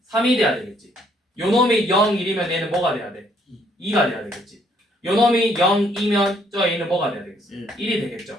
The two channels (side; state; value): both; normal; correlation 0.67